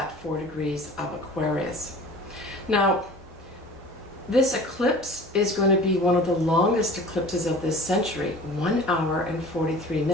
4 degrees of Aquarius. Now, this eclipse is going to be one of the longest eclipses of this century, 1 hour and 43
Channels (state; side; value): normal; both; correlation 0.42